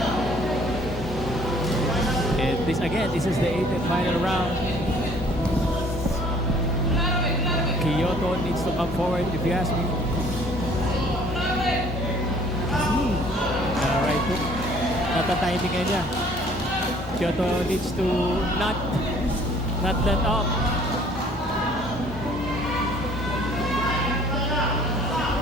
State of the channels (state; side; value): normal; both; correlation 0.56